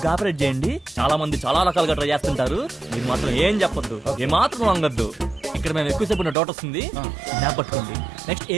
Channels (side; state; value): left; drops out; at 6.4 s